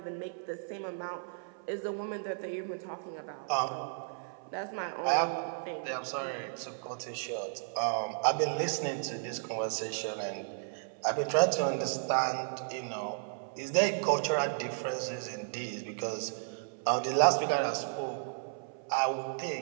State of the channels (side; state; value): left; silent; 55 dB below the other